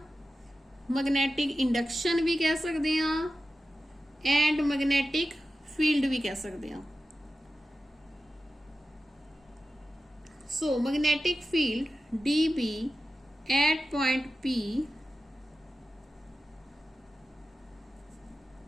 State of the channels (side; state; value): both; normal; correlation 0.94